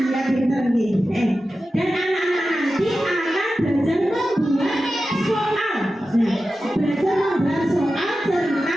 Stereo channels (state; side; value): normal; both; correlation 0.93